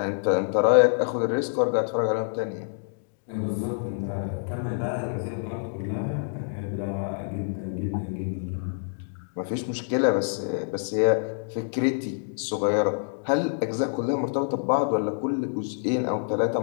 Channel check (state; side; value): silent; right; digital silence